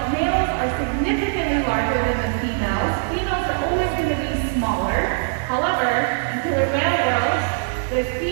males are significantly larger than the females. Females are always going to be smaller. However, in killer whale world, the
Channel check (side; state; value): left; silent; digital silence